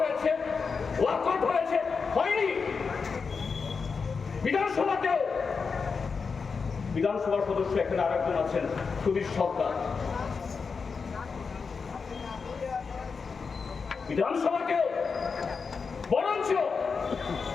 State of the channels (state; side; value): quieter; right; 5.2 dB